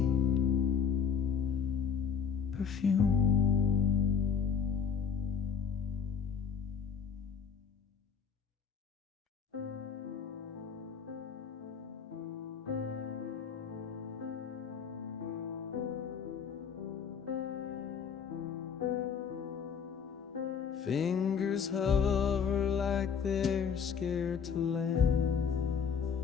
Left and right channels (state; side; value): quieter; right; 6.9 dB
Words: perfume. Fingers hover like they're scared to land.